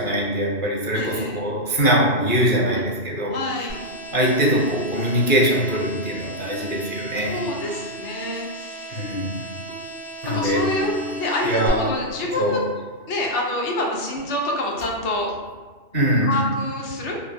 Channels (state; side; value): late; right; 2.7 ms